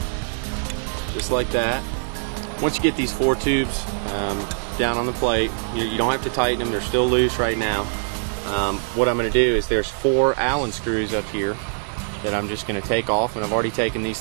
Just like that. Once you get these 4 tubes down on the plate, you don't have to tighten them, they're still loose right now. What I'm going to do is there's 4 Allen screws up here that I'm just going to take off, and I've already taken these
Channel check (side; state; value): left; silent; 56 dB below the other